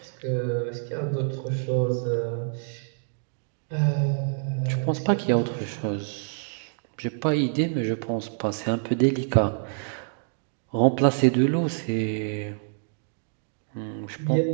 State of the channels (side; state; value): left; silent; digital silence